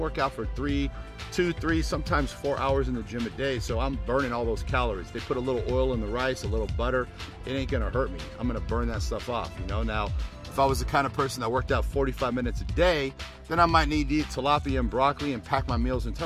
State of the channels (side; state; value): both; identical; correlation 1.00